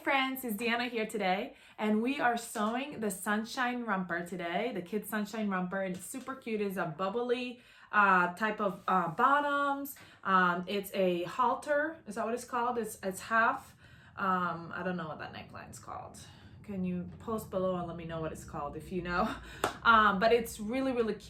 friends, it's Deanna here today, and we are sewing the sunshine romper today, the kids sunshine romper, and it's super cute. It's a bubbly type of bottoms. It's a halter, is that what it's called? It's half, I don't know what that neckline's called. Can you post below and let me know what it's called if you know? But it's really, really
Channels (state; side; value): identical; both; correlation 1.00